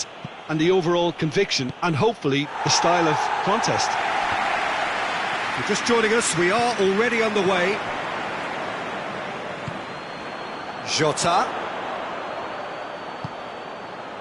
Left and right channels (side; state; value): both; identical; correlation 1.00